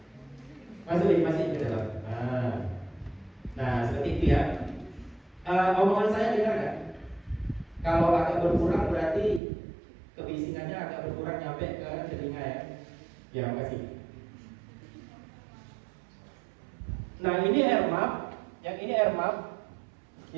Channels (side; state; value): left; drops out; at 9.4 s